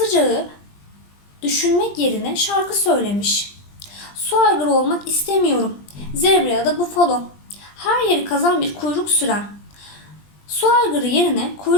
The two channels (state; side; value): late; right; 20 ms